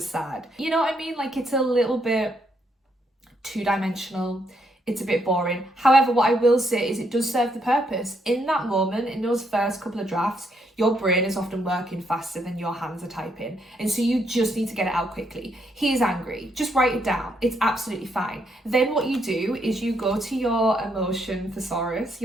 sad. You know what I mean? Like, it's a little bit two-dimensional. It's a bit boring. However, what I will say is it does serve the purpose. In that moment, in those first couple of drafts, your brain is often working faster than your hands are typing. And so you just need to get it out quickly. He is angry. Just write it down. It's absolutely fine. Then what you do is you go to your Emotion Thesaurus,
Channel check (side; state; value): both; normal; correlation 0.75